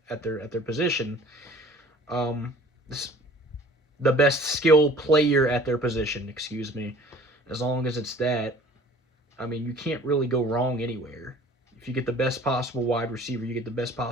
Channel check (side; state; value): both; normal; correlation 0.49